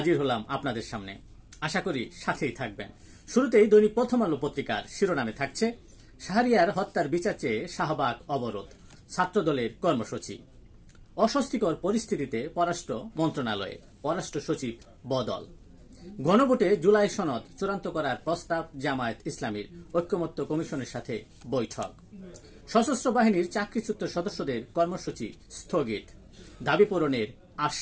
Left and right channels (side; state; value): both; identical; correlation 1.00